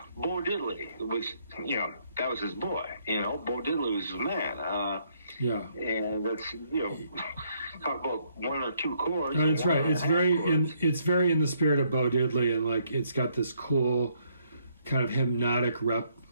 Bo Diddley was, that was his boy. Bo Diddley was his man. Yeah. And that's, talk about one or two chords. No, that's right. It's very in the spirit of Bo Diddley, and like it's got this cool kind of hypnotic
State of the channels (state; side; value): inverted; both; correlation -0.70